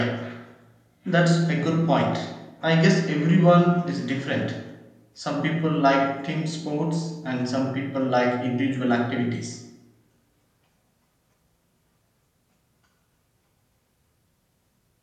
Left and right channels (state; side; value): identical; both; correlation 1.00